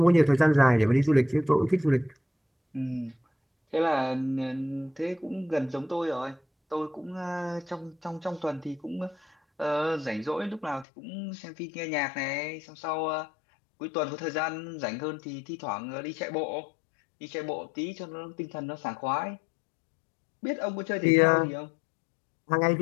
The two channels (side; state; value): right; drops out; at 10.9 s